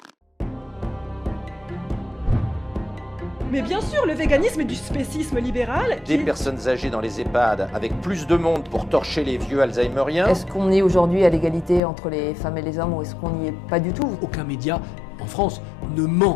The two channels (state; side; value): drops out; right; at 11.8 s